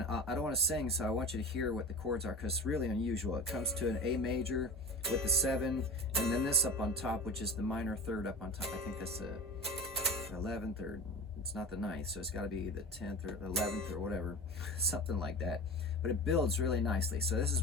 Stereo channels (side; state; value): both; normal; correlation 0.33